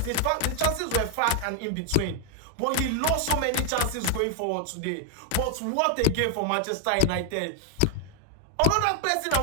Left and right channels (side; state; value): both; different; correlation 0.00